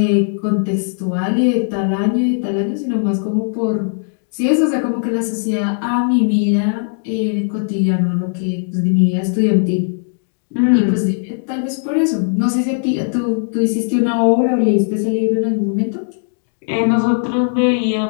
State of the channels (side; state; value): right; silent; digital silence